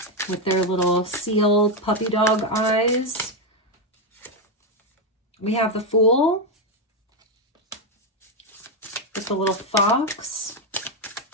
with their little seal puppy dog eyes. We have the Fool with the little fox,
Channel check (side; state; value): both; normal; correlation 0.07